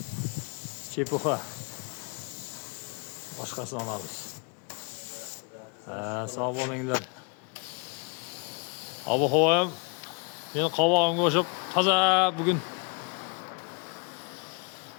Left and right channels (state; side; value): quieter; right; 34.4 dB